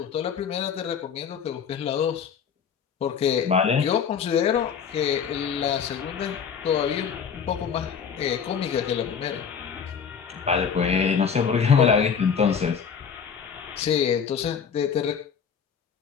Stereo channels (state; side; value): quieter; right; 6.9 dB